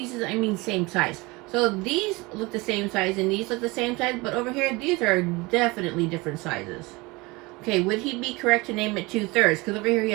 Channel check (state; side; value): quieter; left; 24.0 dB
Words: I mean same size. So these look the same size and these look the same size, but over here, these are definitely different sizes. Okay, would he be correct to name it 2/3? Because over here he